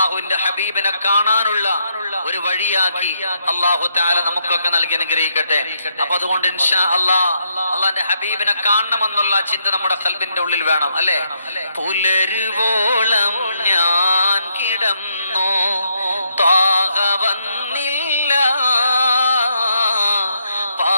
ഹബീബിനെ കാണാനുള്ള ഒരു വഴിയാക്കി അല്ലാഹു തആല നമുക്കൊക്കെ നൽകി അനുഗ്രഹിക്കട്ടെ. അപ്പൊ അതുകൊണ്ട് ഇൻഷാ അല്ലാഹ് അല്ലാഹുവിന്റെ ഹബീബിനെ കാണണമെന്നുള്ള ചിന്ത നമ്മുടെ ഖൽബിന്റെ ഉള്ളിൽ വേണം, അല്ലേ? പുലരുവോളം ഞാൻ കിടന്നു, ത്വാഹ വന്നില്ല,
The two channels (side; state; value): both; inverted; correlation -0.76